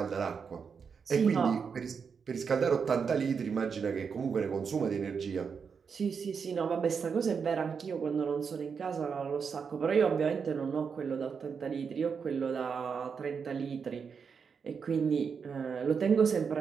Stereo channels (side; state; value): left; quieter; 6.1 dB